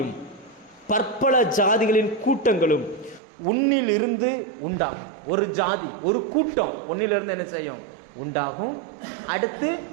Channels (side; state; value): left; drops out; at 3.2 s